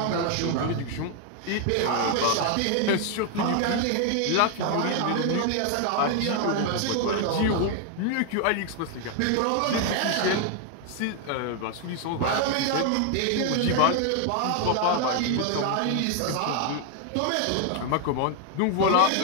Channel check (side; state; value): both; different; correlation 0.00